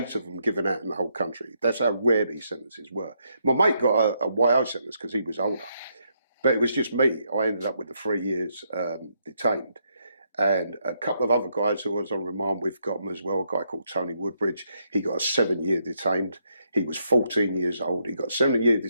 of them given out in the whole country. That's how rare these sentences were. My mate got a YO sentence because he was older. But it was just me. I ended up with the 3 years detained. And a couple of other guys who I was on remand with got them as well. A guy called Tony Woodbridge. He got a 7-year detained. He was 14 years old. He got 7 years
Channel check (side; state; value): both; inverted; correlation -0.77